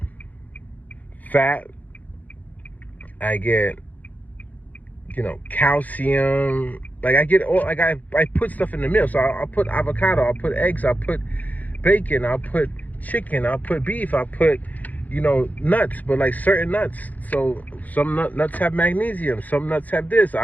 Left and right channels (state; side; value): late; right; 0.079 ms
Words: fat, I get, calcium. I get all, I put stuff in the meal. So I'll put avocado, I'll put eggs, I'll put bacon, I'll put chicken, I'll put beef, I'll put, nuts, but certain nuts. So some nuts have magnesium, some nuts have this.